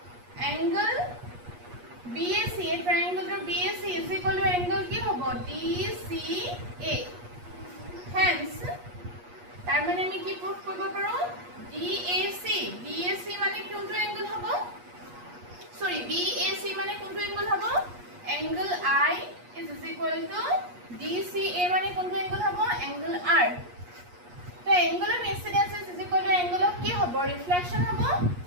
angle BAC triangle BAC is equal to angle কি হ'ব DCA hence তাৰ মানে আমি কি প্ৰুফ কৰিব পাৰো DAC মানে কোনটো angle হ'ব sorry BAC মানে কোনটো angle হ'ব angle I is equal to DCA মানে কোনটো angle হ'ব angle R তো angle of incidence is equal to angle of কি হ'ব reflection হ'ব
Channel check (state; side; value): late; left; 8.4 ms